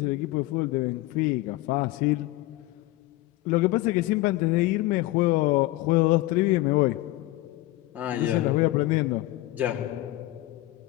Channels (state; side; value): quieter; right; 18.1 dB